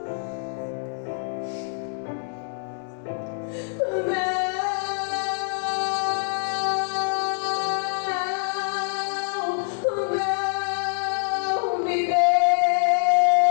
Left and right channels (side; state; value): right; silent; digital silence